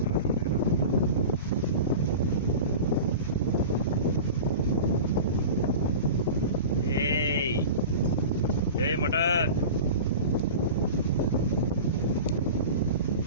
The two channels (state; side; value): inverted; both; correlation -0.33